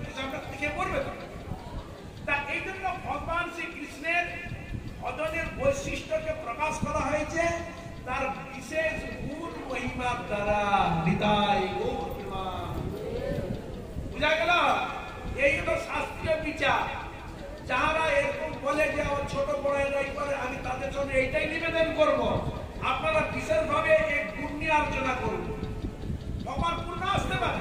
হিসাবটা খেয়ে পড়বে তো। তা এই জন্য ভগবান শ্রীকৃষ্ণের ভজনের বৈশিষ্ট্যকে প্রকাশ করা হয়েছে তার বিশেষ গুণ মহিমার দ্বারা। বিদায় গৌর প্রেম। বুঝা গেল? এই হলো শাস্ত্রীয় বিচার। যারা এরকম বলে যে আমার ছোট বড় এরাই করে, আমি তাদের জন্য এইটাই নিবেদন করব, আপনারা বিশেষভাবে এই গুণ নিয়ে আলোচনা করুন। ভগবান পূর্ণ আসতে পারে,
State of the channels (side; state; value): both; identical; correlation 1.00